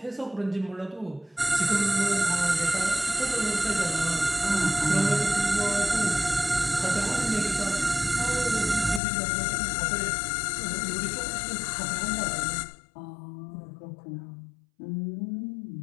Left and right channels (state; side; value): drops out; right; at 9.0 s